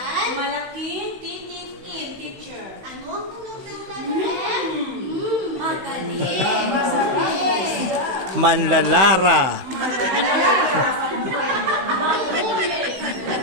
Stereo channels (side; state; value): left; late; 16 ms